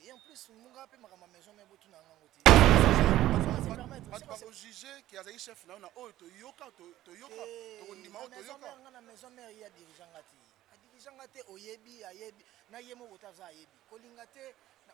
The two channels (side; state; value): left; quieter; 14.3 dB